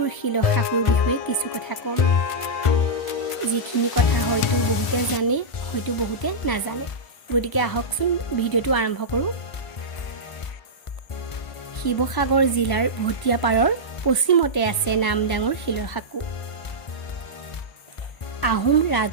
শিলশাকুৰ বিষয়ে কিছু কথা ক'ম। যিখিনি কথা হয়তো বহুতে জানে, হয়তো বহুতে নাজানে। গতিকে আহকচোন ভিডিঅ'টো আৰম্ভ কৰোঁ। শিৱসাগৰ জিলাৰ ভটিয়াপাৰৰ পশ্চিমতে আছে নামডাঙৰ শিলশাকু। আহোম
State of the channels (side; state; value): right; late; 1.0 ms